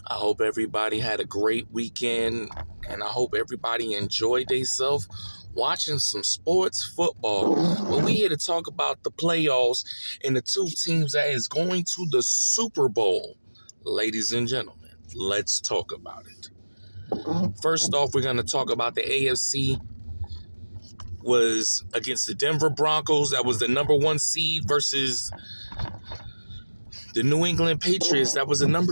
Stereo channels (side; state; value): both; inverted; correlation -1.00